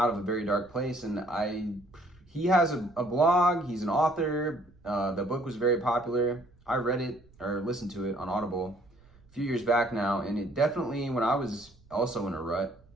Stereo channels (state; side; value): noise; right; rumble, 28 dB below the sound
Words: of a very dark place. And he has a blog, he's an author, the book was very popular. I read it or listened to it on Audible a few years back now, and it definitely, when I was also in a rut,